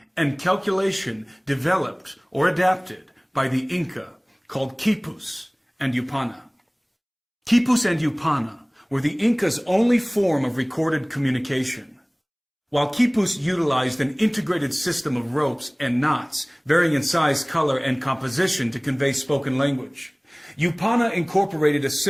and calculation developed or adapted by the Inca called quipus and yupana. Quipus and yupana were the Inca's only form of recorded communication. While quipus utilized an integrated system of ropes and knots, varying in size, color, and composition to convey spoken language, yupana incorporated a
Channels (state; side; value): identical; both; correlation 1.00